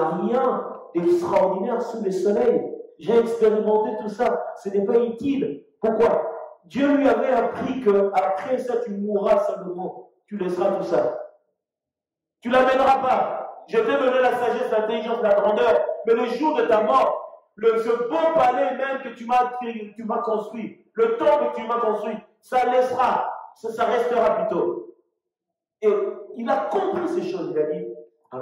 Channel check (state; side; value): identical; both; correlation 1.00